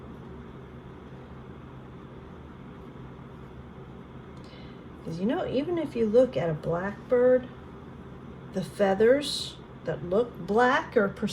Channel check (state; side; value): identical; both; correlation 1.00